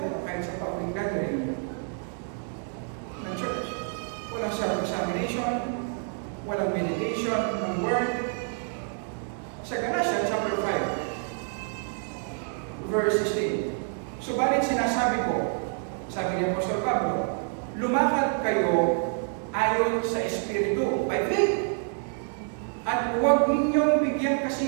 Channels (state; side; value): silent; left; 55 dB below the other